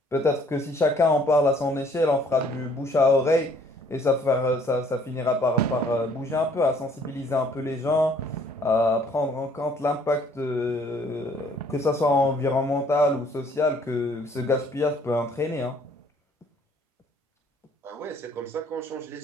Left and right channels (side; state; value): both; normal; correlation 0.60